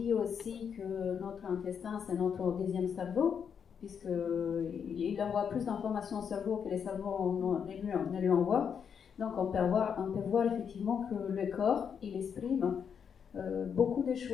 aussi que notre intestin, c'est notre deuxième cerveau, puisqu'il envoie plus d'informations au cerveau que les cerveaux ne lui envoient. Donc on peut voir effectivement que le corps, il exprime beaucoup de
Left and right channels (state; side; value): quieter; right; 7.2 dB